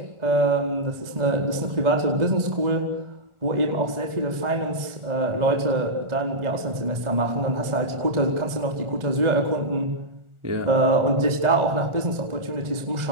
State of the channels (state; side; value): late; left; 1.4 ms